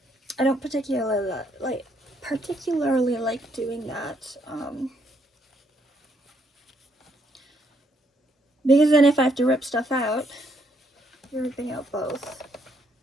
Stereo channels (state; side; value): normal; both; correlation 0.72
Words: don't particularly like doing that, because then if I have to rip stuff out, you're ripping out both.